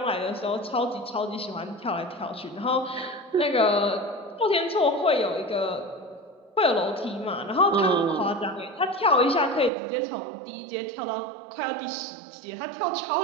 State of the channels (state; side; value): drops out; left; at 9.7 s